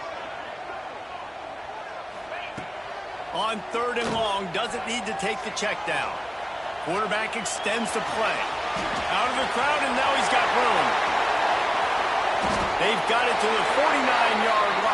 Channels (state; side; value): identical; both; correlation 1.00